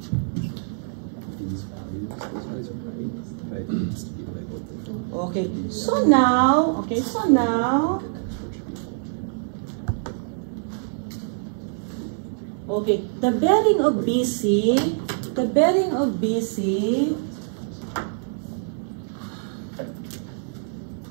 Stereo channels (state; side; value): silent; left; digital silence